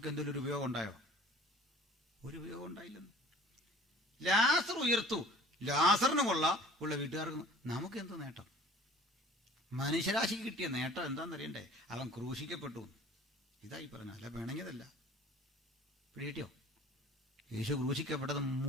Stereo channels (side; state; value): both; normal; correlation 0.47